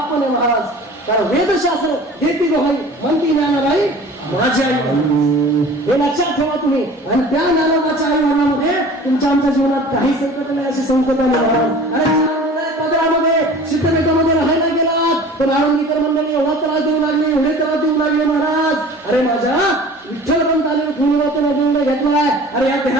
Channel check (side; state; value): both; normal; correlation 0.43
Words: पण आहे महाराज. कारण वेदशास्त्र देती दोहाई म्हणती ज्ञानाबाई माझी आई. हे लक्षात ठेवा तुम्ही. आणि त्या ज्ञानाबाच्या आई वडिलांमध्ये तुमच्या आमच्या जीवनात काही संकट नाही अशी संकट आहे महाराज. अरे पदरामध्ये सिद्धमेकामध्ये राहायला गेलात पण आळंदीकर मंडळी एवढा त्रास देऊ लागले, एवढे त्रास देऊ लागले महाराज. अरे माझ्या विठ्ठल पंताने निर्णय घेतलाय. अरे या